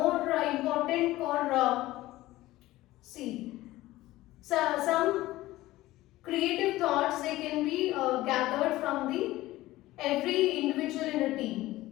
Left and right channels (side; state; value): right; quieter; 17.1 dB